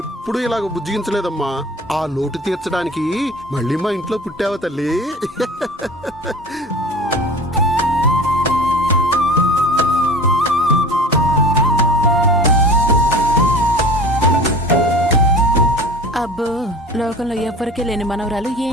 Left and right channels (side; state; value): both; normal; correlation 0.39